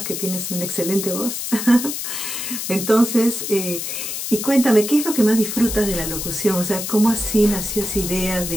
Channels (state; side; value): noise; left; hiss, 5 dB below the sound